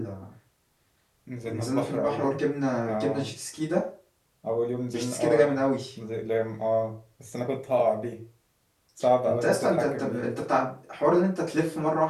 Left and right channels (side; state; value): both; identical; correlation 1.00